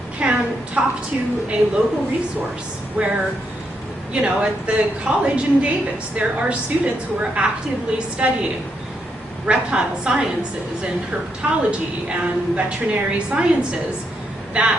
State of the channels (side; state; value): both; normal; correlation 0.79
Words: can talk to a local resource where, at the college in Davis, there are students who are actively studying reptile sciences and herpetology and veterinary sciences